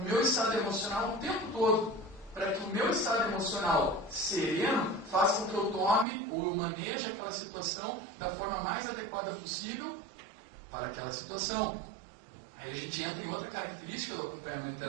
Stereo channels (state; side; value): drops out; left; at 6.1 s